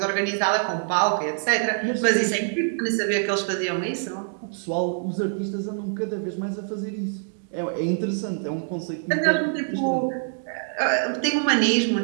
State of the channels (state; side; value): silent; left; digital silence